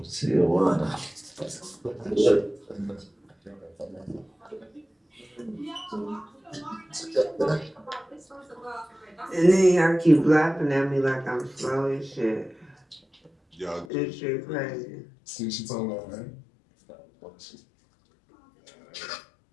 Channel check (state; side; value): drops out; right; at 13.9 s